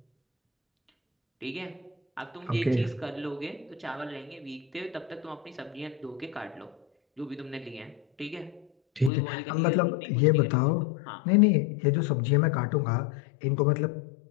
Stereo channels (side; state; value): right; drops out; at 9.1 s